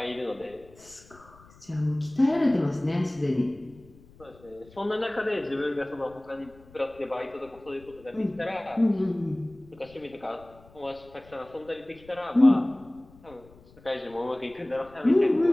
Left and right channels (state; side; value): noise; left; rumble, 25 dB below the sound